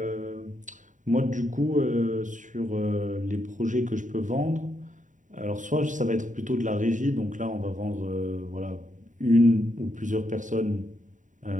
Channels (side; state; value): left; late; 0.37 ms